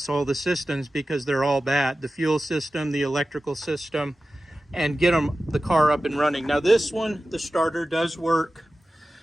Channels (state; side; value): normal; both; correlation 0.95